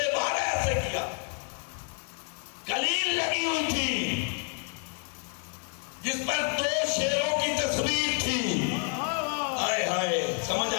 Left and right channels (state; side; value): quieter; right; 38.3 dB